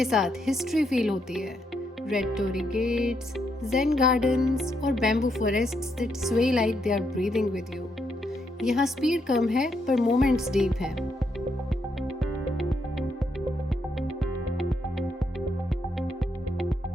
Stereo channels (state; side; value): normal; both; correlation 0.78